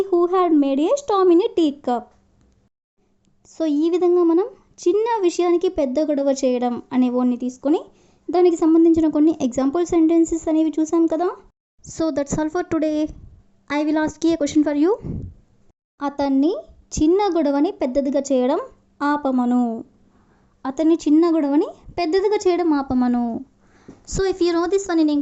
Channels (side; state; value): both; identical; correlation 1.00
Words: who had made a storm in a tea cup. So ఈ విధంగా మనం చిన్న విషయానికి పెద్ద గొడవ చేయడం అనే వర్డ్ని తీసుకొని దానికి సంబంధించిన కొన్ని ఎగ్జాంపుల్ సెంటెన్సెస్ అనేవి చూసాం కదా. So that's all for today. I will ask a question for you. అతన్ని చిన్న గొడవని పెద్దదిగా చేయడం ఆపమను, అతన్ని చిన్న గొడవని పెద్దదిగా చేయడం ఆపమను. So if you know this one in